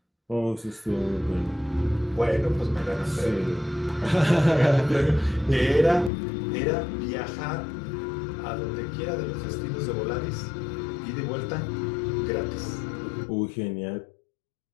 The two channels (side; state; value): right; drops out; at 6.1 s